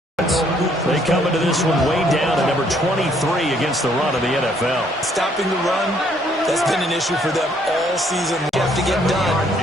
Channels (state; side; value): normal; both; correlation 0.66